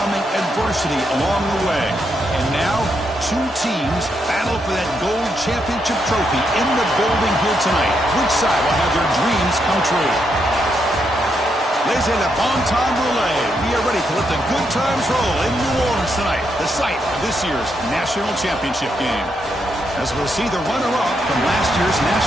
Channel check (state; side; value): normal; both; correlation 0.80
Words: adversity along the way. And now, two teams battle for that gold championship trophy in the building here tonight. Which side will have their dreams come true? Ladies and bon temps roulette. We are ready to let the good times roll in New Orleans tonight, the site of this year's national championship game. As we'll see the runner-up from last year's